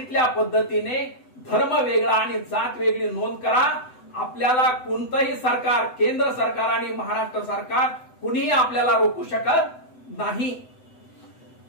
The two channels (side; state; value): right; late; 7.9 ms